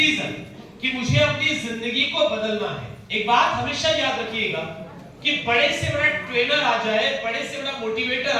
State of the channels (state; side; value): identical; both; correlation 1.00